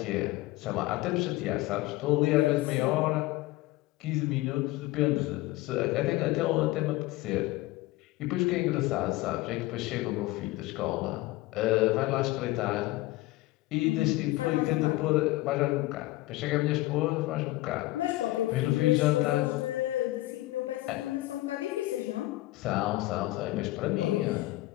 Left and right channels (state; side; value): quieter; right; 18.4 dB